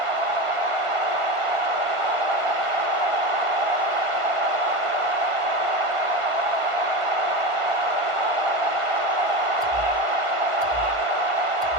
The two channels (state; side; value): late; left; 1.5 ms